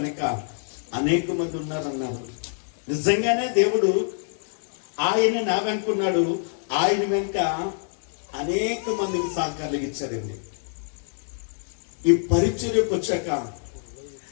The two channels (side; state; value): right; silent; digital silence